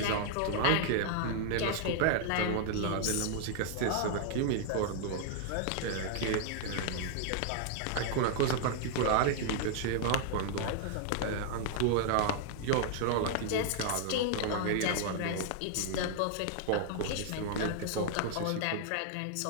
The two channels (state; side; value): different; both; correlation 0.00